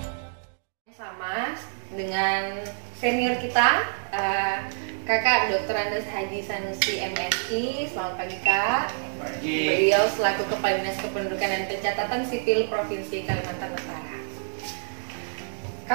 Sama dengan senior kita, Kakak Dr. Andes Haji Sanusi MSI. Selamat pagi Kak. Pagi. Beliau selaku Kepala Dinas Kependudukan dan Pencatatan Sipil Provinsi Kalimantan Utara.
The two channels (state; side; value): silent; left; digital silence